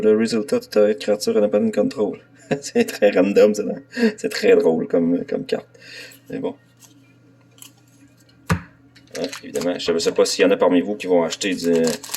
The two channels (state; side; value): identical; both; correlation 1.00